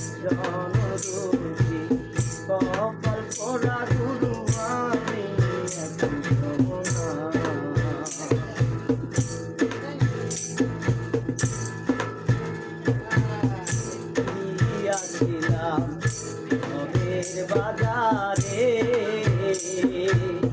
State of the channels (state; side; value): identical; both; correlation 1.00